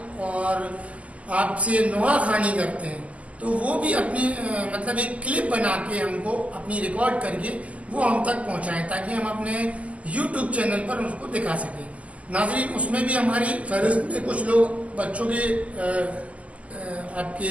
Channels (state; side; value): late; left; 0.068 ms